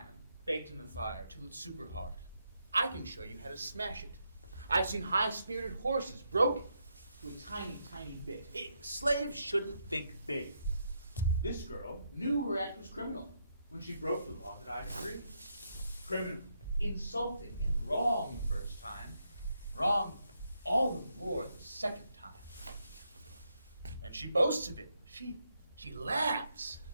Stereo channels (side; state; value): both; inverted; correlation -0.79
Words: baked in the fire till it's super hard. I can show you how to smash it. I've seen high-spirited horses broken to a tiny, tiny bit. Slaves shouldn't think big. This girl knew her act was criminal when she broke the law that I decreed. Criminal, insulting, and wrong the first time. Wrong all the more the second time. And she boasts of it. She laughs.